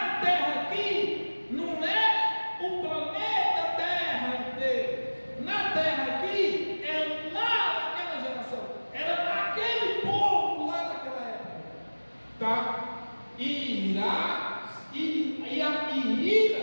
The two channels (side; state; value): both; inverted; correlation -1.00